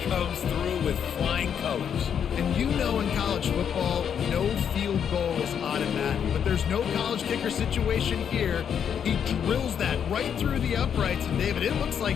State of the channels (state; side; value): quieter; right; 8.1 dB